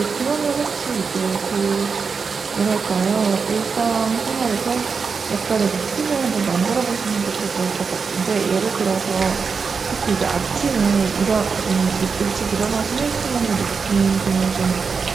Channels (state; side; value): quieter; left; 5.3 dB